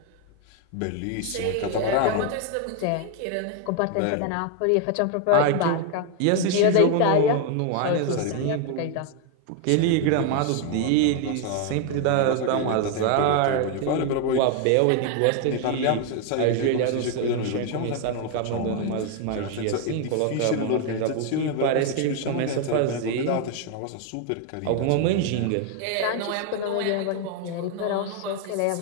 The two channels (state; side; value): different; both; correlation 0.01